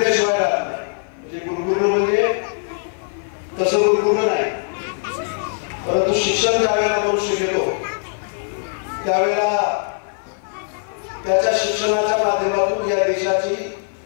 राहत नाही. म्हणजे गुरगुरणं म्हणजे तसं गुरगुरणं नाही, परंतु शिक्षण ज्यावेळेला मनुष्य घेतो त्यावेळेला त्याच्या शिक्षणाच्या माध्यमातून या देशाची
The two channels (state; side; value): silent; right; 55 dB below the other